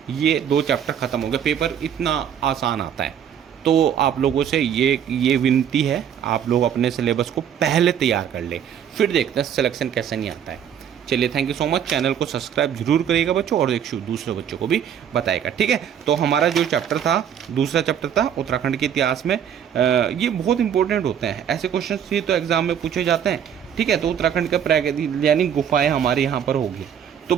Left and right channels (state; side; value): quieter; left; 8.9 dB